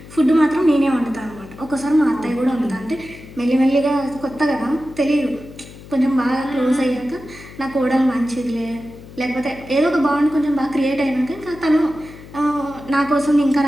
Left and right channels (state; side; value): noise; left; hum, 18 dB below the sound